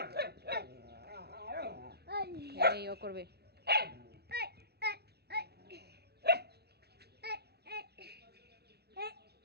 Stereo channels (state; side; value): late; left; 0.48 ms